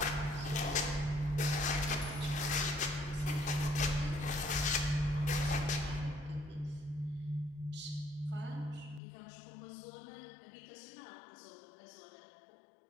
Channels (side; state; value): right; drops out; at 9.0 s